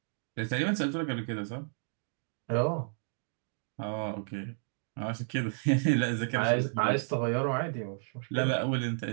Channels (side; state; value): left; silent; digital silence